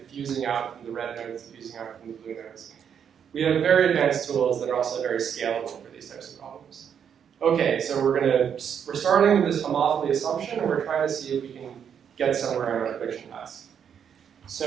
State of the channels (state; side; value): quieter; left; 8.0 dB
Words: out from the red nodes, diffusing out from the blue nodes. We have very advanced tools that are also very scalable for these types of problems. Okay, so we're starting with this homophily assumption, and we're trying to see if we can get somewhere on our prediction task.